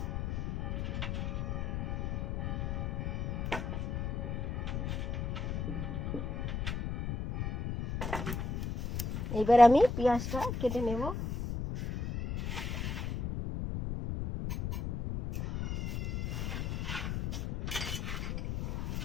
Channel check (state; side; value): noise; left; rumble, 2 dB below the sound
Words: এবার আমি পেঁয়াজটা কেটে নেব।